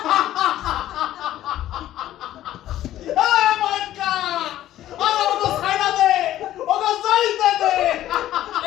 এই মাইকা আমার ওকে ছাইড়া দে ওকে যাইতে দে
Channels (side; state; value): right; quieter; 13.3 dB